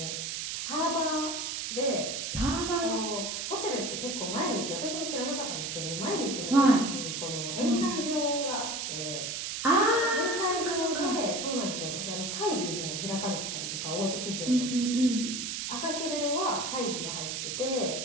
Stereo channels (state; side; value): noise; right; hiss, 3 dB below the sound